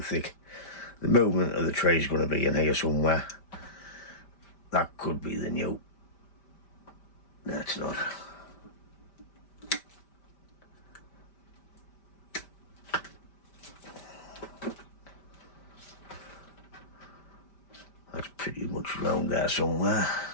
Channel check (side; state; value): right; late; 5.1 ms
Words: thick. The movement of the tree is going to be in here somewhere. That could be the new. No, it's not. That's pretty much round there somewhere.